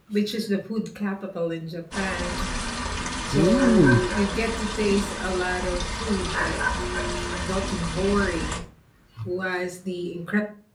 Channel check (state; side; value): identical; both; correlation 1.00